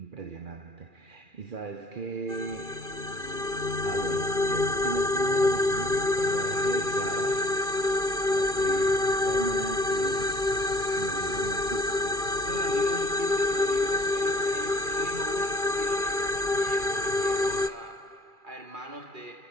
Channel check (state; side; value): late; left; 2.4 ms